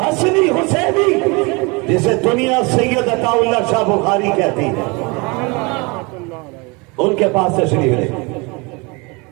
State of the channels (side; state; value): left; quieter; 27.9 dB